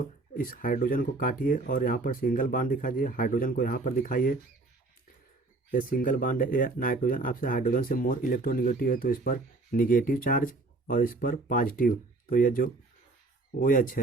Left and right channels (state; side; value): quieter; left; 3.3 dB